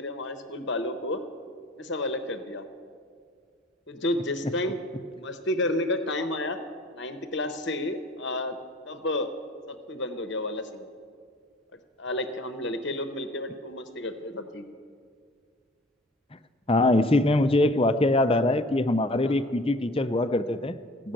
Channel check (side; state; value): both; normal; correlation 0.47